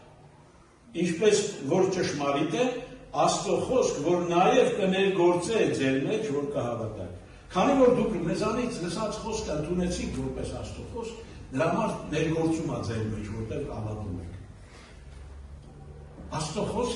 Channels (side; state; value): both; identical; correlation 1.00